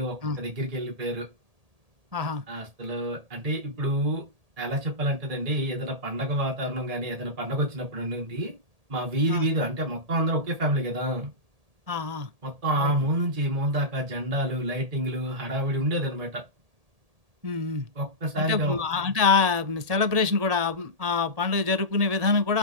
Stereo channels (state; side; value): late; left; 1.8 ms